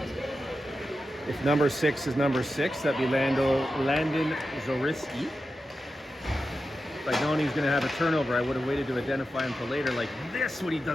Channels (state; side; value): normal; both; correlation 0.91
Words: If number 6 is number 6, that'd be Landon Zoriski. If I'd known he was going to have a turnover, I would have waited to identify him for later, like this, when he